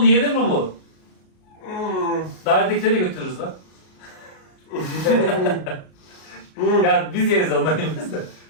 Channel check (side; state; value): right; late; 38 ms